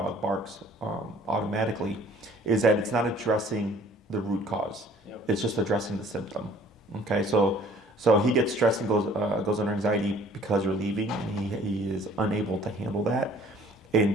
barks automatically. Is that it's not addressing the root cause. Yep. It's just addressing the symptom. Okay. So he gets stressed and goes under anxiety because you're leaving, and he is unable to handle that, and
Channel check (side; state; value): both; normal; correlation 0.54